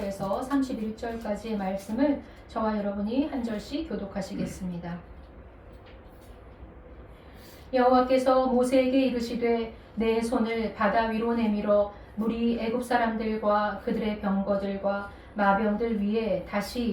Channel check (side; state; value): both; identical; correlation 1.00